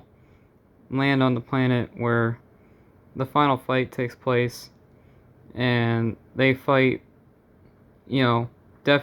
land on the planet where the final fight takes place, and they fight,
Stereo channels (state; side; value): identical; both; correlation 1.00